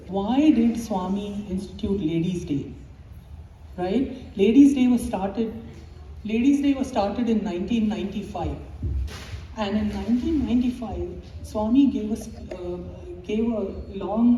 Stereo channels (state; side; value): identical; both; correlation 1.00